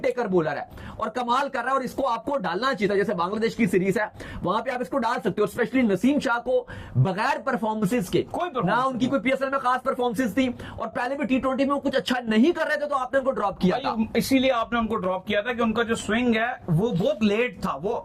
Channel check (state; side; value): identical; both; correlation 1.00